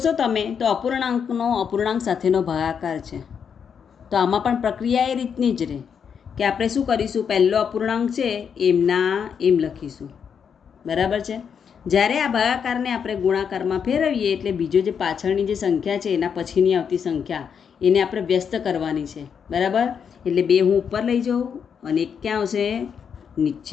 તમે તો અપૂર્ણાંકનો અપૂર્ણાંક સાથેનો ભાગાકાર છે. તો આમાં પણ પ્રક્રિયા એ રીતની જ રહે કે આપણે શું કરીશું? પહેલો અપૂર્ણાંક છે એમના એમ લખીશું. બરાબર છે. જ્યારે આ ભાગાકારને આપણે ગુણાકારમાં ફેરવીએ એટલે બીજો જે પાછળની જે સંખ્યા છે એના પછીની આવતી સંખ્યા એને આપણે વ્યસ્ત કરવાની છે. બરાબર? એટલે 2 હું ઉપર લઈ જાઉં અને 1 ક્યાં આવશે?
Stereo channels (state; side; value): quieter; right; 7.1 dB